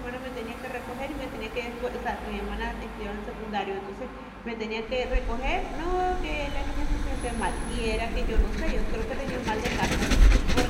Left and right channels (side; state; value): both; identical; correlation 1.00